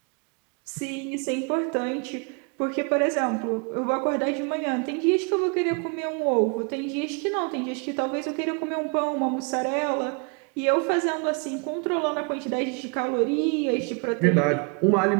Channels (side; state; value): left; quieter; 33.8 dB